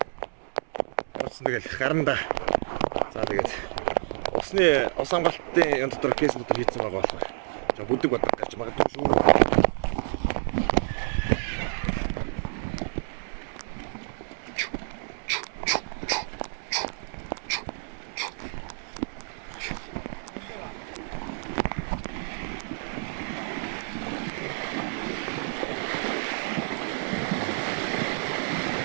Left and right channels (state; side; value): silent; left; 58 dB below the other